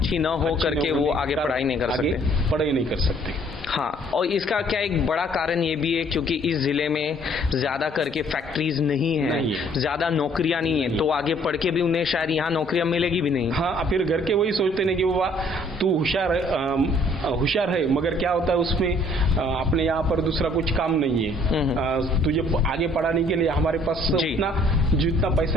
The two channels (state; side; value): normal; both; correlation 0.60